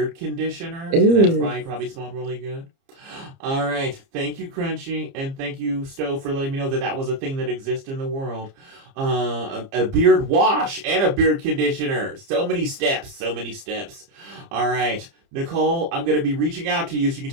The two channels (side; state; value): left; late; 30 ms